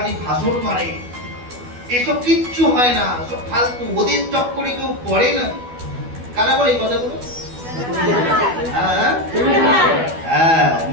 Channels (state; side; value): late; left; 12 ms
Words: ভাষণ মারে, এসব কিচ্ছু হয় না, সব ফালতু, ওদের চক্করে কেউ পড়ে না। কারা বলে এই কথাগুলো? হ্যাঁ,